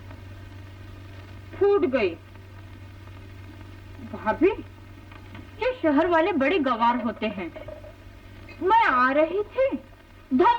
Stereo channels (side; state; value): both; identical; correlation 1.00